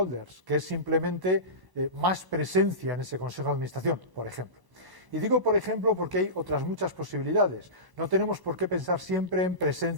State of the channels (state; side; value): late; left; 1.0 ms